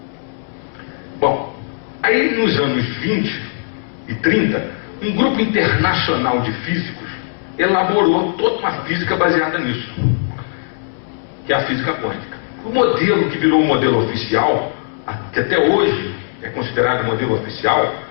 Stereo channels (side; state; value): right; silent; 66 dB below the other